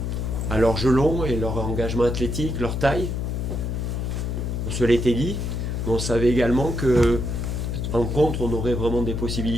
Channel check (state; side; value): noise; left; hum, 2 dB below the sound